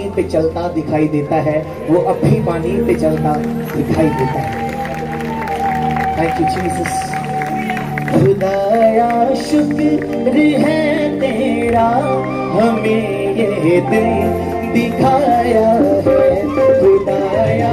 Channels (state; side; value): identical; both; correlation 1.00